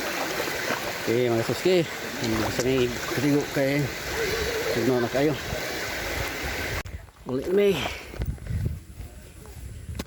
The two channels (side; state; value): both; identical; correlation 1.00